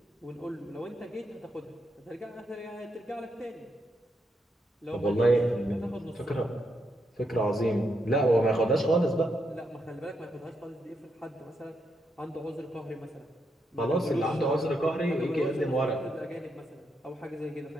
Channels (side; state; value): both; normal; correlation 0.80